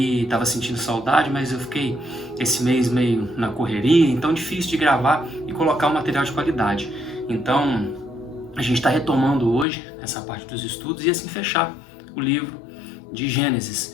estava sentindo saudade, mas eu fiquei esse mês meio na correria, então difícil de gravar e colocar um material de qualidade. Então, a gente está retomando hoje essa parte dos estudos e assim fechar o livro de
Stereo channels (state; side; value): drops out; right; at 9.7 s